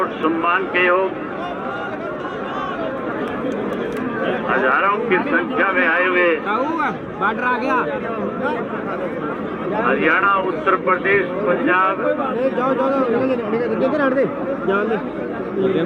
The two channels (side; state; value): both; identical; correlation 1.00